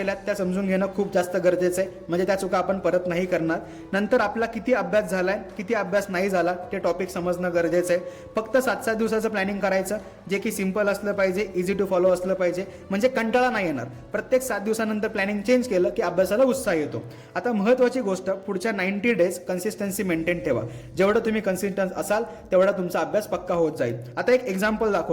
त्या समजून घेणं खूप जास्त गरजेचं आहे, म्हणजे त्या चुका आपण परत नाही करणार. नंतर आपला किती अभ्यास झाला आहे, किती अभ्यास नाही झाला ते टॉपिक समजणं गरजेचं आहे. फक्त 7-7 दिवसाचं प्लॅनिंग करायचं, जे की सिम्पल असलं पाहिजे, इझी टू फॉलो असलं पाहिजे, म्हणजे कंटाळा नाही येणार. प्रत्येक 7 दिवसानंतर प्लॅनिंग चेंज केलं की अभ्यासाला उत्साह येतो. आता महत्त्वाची गोष्ट, पुढच्या 90 डेज कन्सिस्टन्सी मेंटेन ठेवा. जेवढं तुम्ही कन्सिस्टन्स असाल तेवढा तुमचा अभ्यास पक्का होत जाईल. आता एक एक्झाम्पल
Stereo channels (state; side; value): identical; both; correlation 1.00